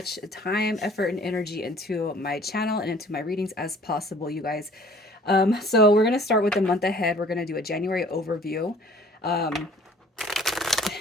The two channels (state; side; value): normal; both; correlation 0.53